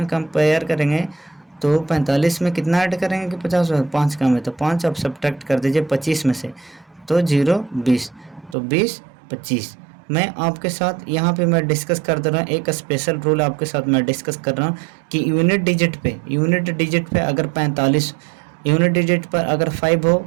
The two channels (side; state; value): left; drops out; at 8.6 s